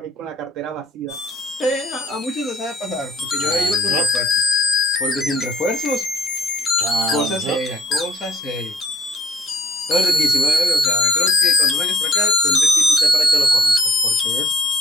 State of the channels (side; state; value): both; normal; correlation 0.60